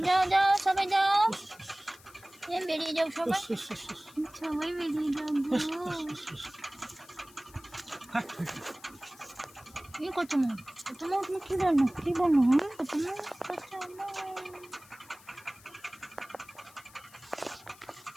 যাও যাও সবাই যাও, বেরিয়ে যাও সবাই, সবাই বেরিয়ে যাও গো। কি করছো মা? তোমার কি বললো? কি বললো? হ্যাঁ তোমার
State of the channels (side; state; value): left; noise; hiss, 23 dB below the sound